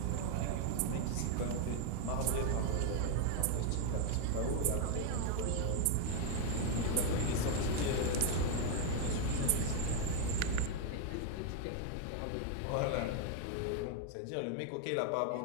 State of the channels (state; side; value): different; both; correlation 0.00